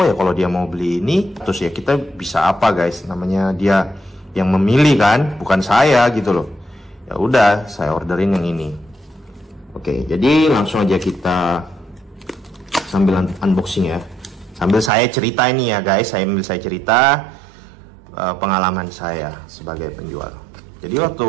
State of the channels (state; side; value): drops out; left; at 14.9 s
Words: ya kalau dia mau beli ini, terus ya kita bisa apa guys, namanya dia yang memilih kan, bukan saya gitu loh. Ya udah saya orderin yang ini. Oke, jadi langsung aja kita sambil unboxing ya. Sambil saya cerita ini ya guys, sambil saya cerita pengalaman saya sebagai penjual. Jadi waktu